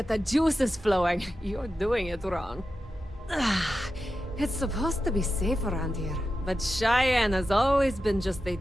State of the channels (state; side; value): normal; both; correlation 0.91